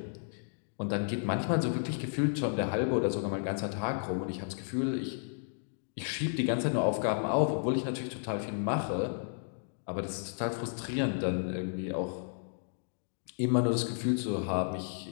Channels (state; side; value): silent; right; digital silence